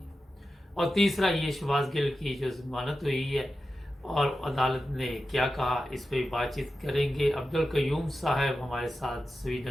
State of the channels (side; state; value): both; normal; correlation 0.92